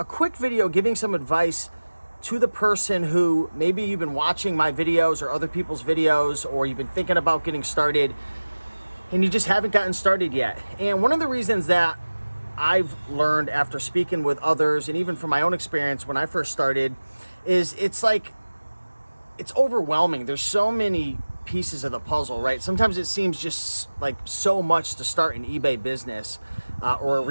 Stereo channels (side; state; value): both; inverted; correlation -1.00